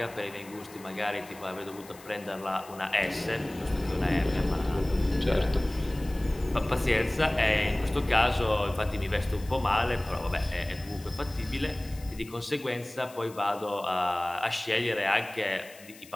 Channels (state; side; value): noise; left; hiss, 21 dB below the sound